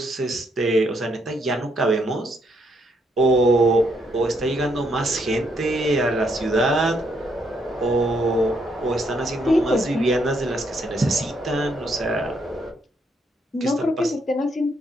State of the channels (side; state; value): both; normal; correlation 0.74